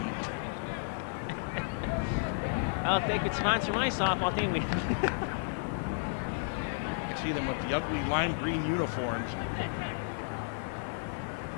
Well, if they could sponsor my softball team, we. I see them with the ugly lime green uniforms.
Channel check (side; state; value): right; silent; digital silence